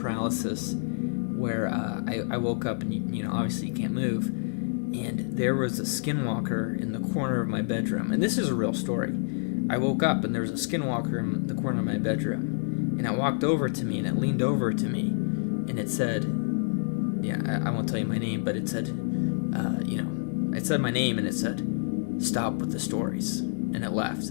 where I woke up and, you know, obviously you can't move. And there was a skinwalker in the corner of my bedroom. And this is a real story. I woke up and there was a skinwalker in the corner of my bedroom. And it walked over to me and it leaned over to me. And it said, I won't tell you my name, but it said, it said my name and it said, "Stop with the stories." And it left.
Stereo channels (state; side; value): silent; right; 59 dB below the other